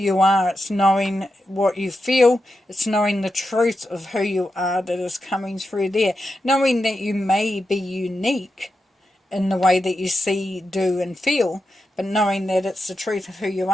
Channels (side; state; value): both; normal; correlation 0.88